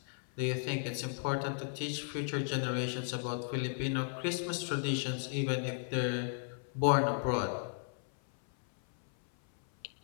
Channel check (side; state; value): right; silent; 54 dB below the other